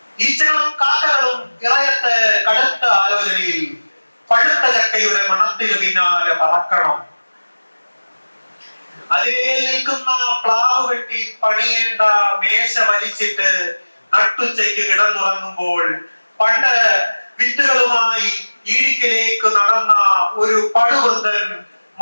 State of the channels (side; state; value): both; inverted; correlation -1.00